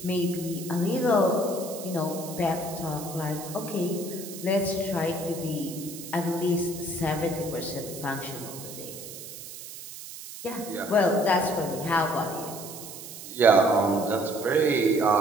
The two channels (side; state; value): right; noise; hiss, 12 dB below the sound